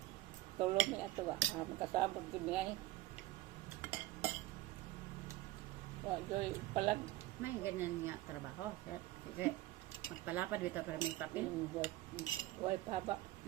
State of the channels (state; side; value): quieter; left; 16.8 dB